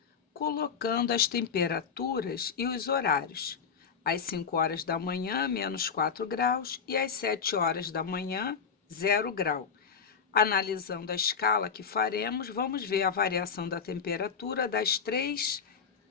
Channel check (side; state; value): right; quieter; 6.3 dB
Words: colocando as temperaturas e os horários. Às 5 horas da manhã, menos 4 graus, e às 7 horas da manhã, 0 grau. Analisando a escala que faremos, vamos ver a variação da temperatura das 3